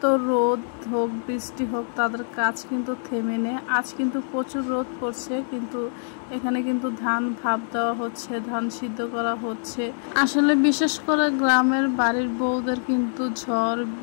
রোদ হোক বৃষ্টি হোক তাদের কাজ কিন্তু থেমে নেই। আজ কিন্তু প্রচুর রোদ পড়ছে, কিন্তু এখানে কিন্তু ধান ভাপ দেওয়া হচ্ছে, ধান সিদ্ধ করা হচ্ছে। আসলে বিশেষ করে গ্রামের বাড়ির বউদের কিন্তু ঝড়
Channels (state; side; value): silent; right; digital silence